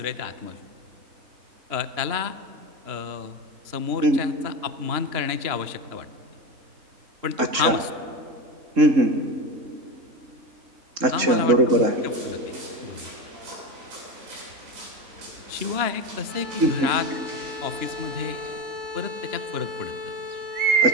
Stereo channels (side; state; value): left; late; 3.7 ms